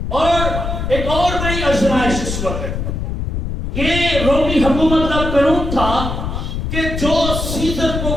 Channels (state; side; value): noise; left; rumble, 3 dB below the sound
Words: اور ایک اور بڑی آزمائش اس وقت یہ رومی حکومت کا قانون تھا کہ جو سیزر کو